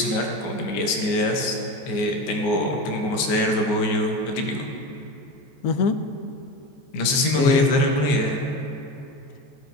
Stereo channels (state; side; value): late; right; 14 ms